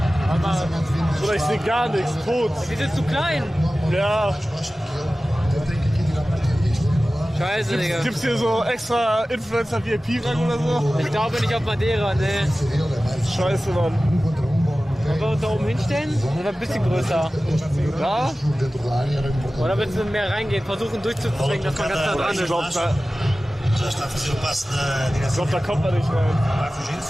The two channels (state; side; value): normal; both; correlation 0.96